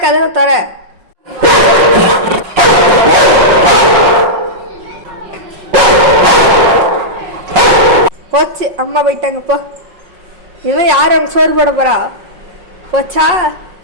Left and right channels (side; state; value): left; late; 5.5 ms